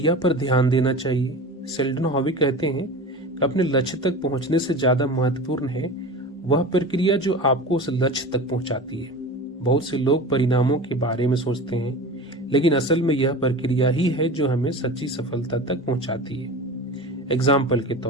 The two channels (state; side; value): normal; both; correlation 0.33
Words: पर ध्यान देना चाहिए। सेल्डन हाउ कहते हैं कि अपने लक्ष्य तक पहुंचने से ज्यादा महत्वपूर्ण है वह प्रक्रिया जो आपको उस लक्ष्य तक पहुंचाती है। बहुत से लोग परिणामों के बारे में सोचते हैं, लेकिन असल में यह प्रक्रिया ही है जो हमें सच्ची सफलता तक पहुंचाती है। एग्जाम्पल के